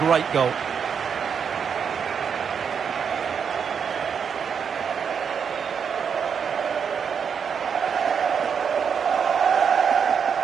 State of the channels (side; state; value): left; quieter; 6.9 dB